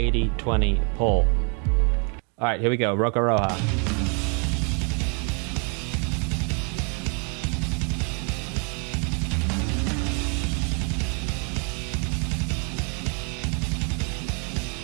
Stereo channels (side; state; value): left; quieter; 37.3 dB